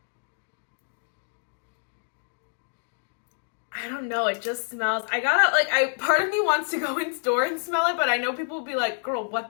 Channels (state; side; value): silent; right; digital silence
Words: I don't know, it just smells, part of me wants to go in store and smell it, but I know people will be like, girl, what